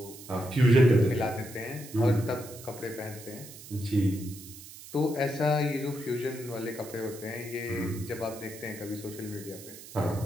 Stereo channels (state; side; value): noise; right; hiss, 16 dB below the sound